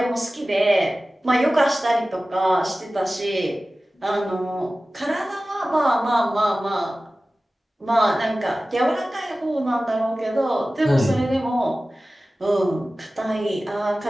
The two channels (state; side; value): normal; both; correlation 0.96